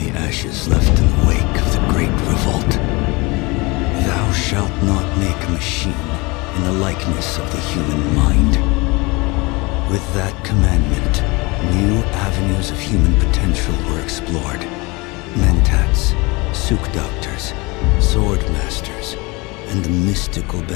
ashes left in the wake of the Great Revolt. Thou shalt not make a machine in the likeness of the human mind. With that commandment, new avenues of human potential were explored. Mentats, Suk Doctors, Sword Masters, and the mystical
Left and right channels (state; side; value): quieter; right; 25.5 dB